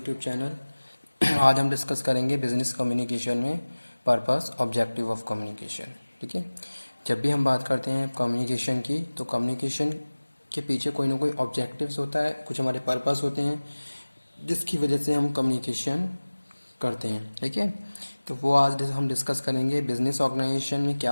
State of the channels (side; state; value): both; inverted; correlation -1.00